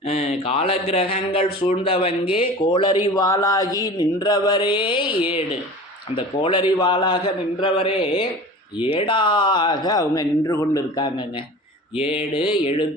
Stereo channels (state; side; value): normal; both; correlation 0.38